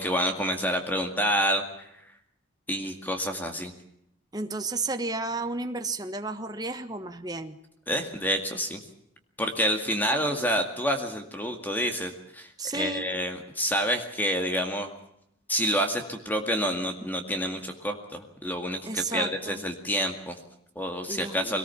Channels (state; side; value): normal; both; correlation 0.29